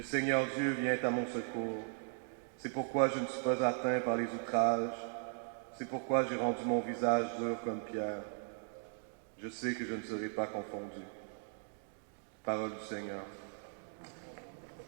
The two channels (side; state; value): left; silent; 53 dB below the other